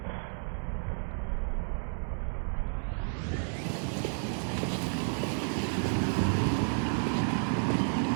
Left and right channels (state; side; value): silent; left; 57 dB below the other